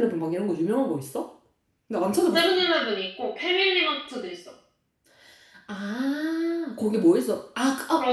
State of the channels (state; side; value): identical; both; correlation 1.00